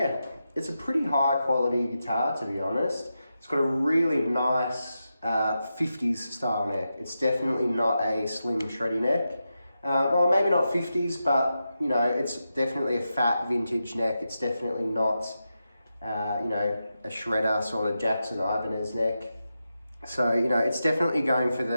It's a pretty high quality guitar, to be honest. It's got a really nice 50s style neck. It's definitely not a slim shreddy neck. Well, maybe not 50s, but you know, it's definitely a fat vintage neck. It's definitely not, you know, a shredder sort of Jackson Ibanez neck. So, you know, it's definitely going for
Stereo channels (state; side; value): inverted; both; correlation -0.89